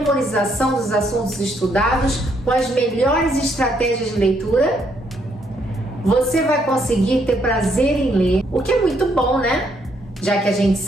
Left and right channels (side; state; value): both; normal; correlation 0.72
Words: dos assuntos estudados com as melhores estratégias de leitura? Você vai conseguir ter prazer em ler, o que é muito bom, né? Já que a gente